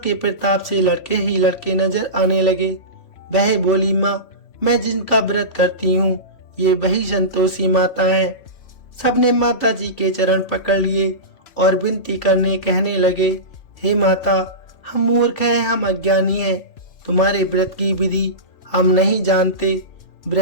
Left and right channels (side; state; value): right; late; 2.9 ms